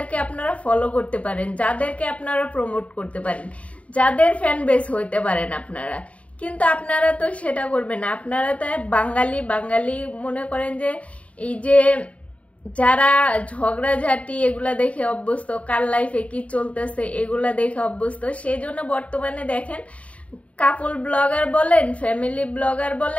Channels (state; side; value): late; right; 0.065 ms